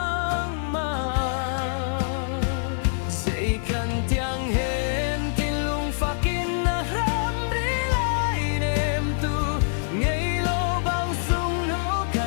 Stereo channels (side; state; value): right; silent; digital silence